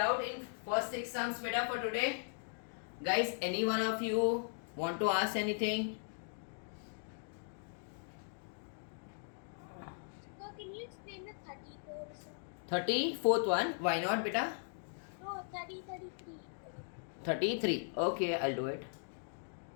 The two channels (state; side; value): silent; right; digital silence